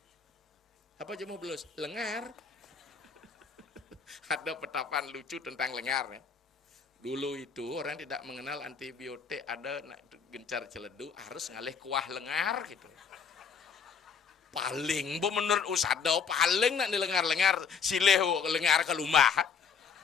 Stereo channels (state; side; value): quieter; right; 6.4 dB